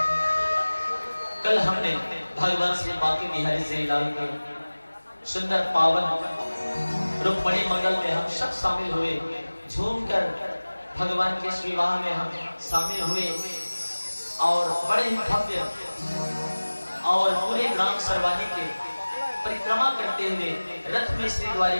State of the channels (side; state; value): both; inverted; correlation -1.00